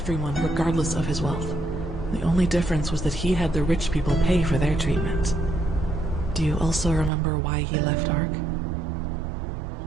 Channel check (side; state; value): left; drops out; at 7.1 s